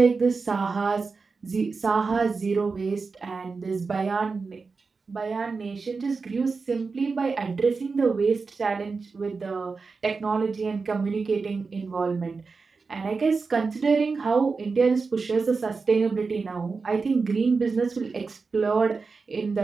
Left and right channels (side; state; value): left; quieter; 4.5 dB